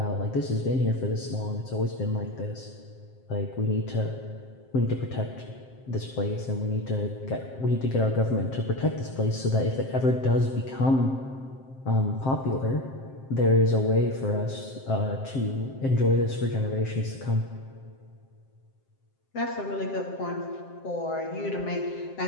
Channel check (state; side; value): late; right; 7.6 ms